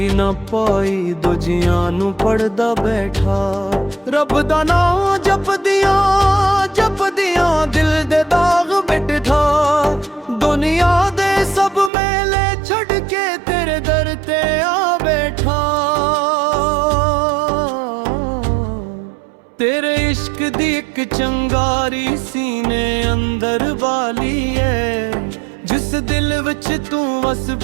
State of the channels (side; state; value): left; drops out; at 11.9 s